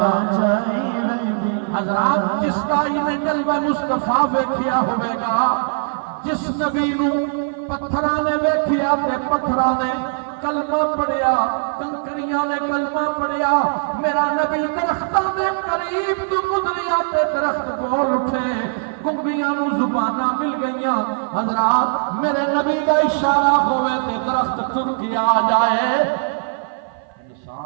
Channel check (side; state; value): left; silent; 55 dB below the other